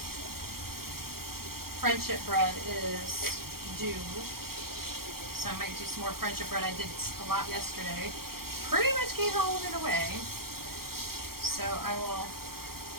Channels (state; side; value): late; left; 0.94 ms